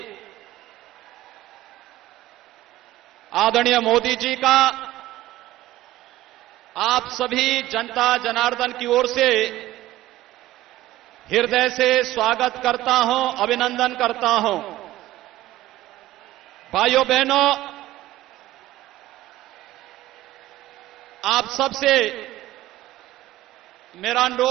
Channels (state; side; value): quieter; left; 15.6 dB